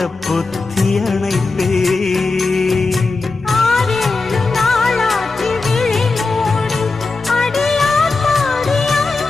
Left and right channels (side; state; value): right; quieter; 3.7 dB